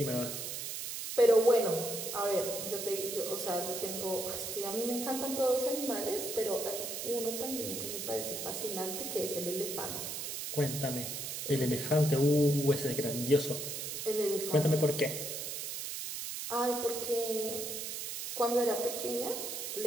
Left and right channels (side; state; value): right; noise; hiss, 5 dB below the sound